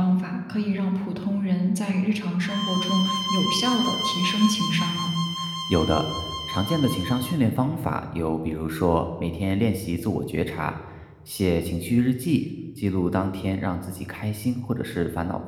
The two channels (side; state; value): both; identical; correlation 1.00